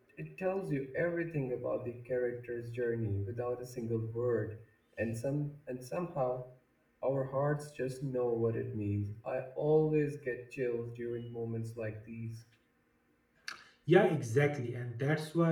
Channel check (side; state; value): both; identical; correlation 1.00